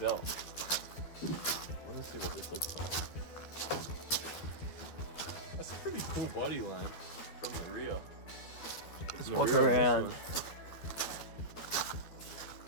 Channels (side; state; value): right; late; 12 ms